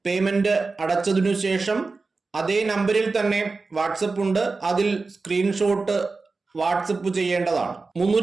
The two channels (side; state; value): left; quieter; 4.0 dB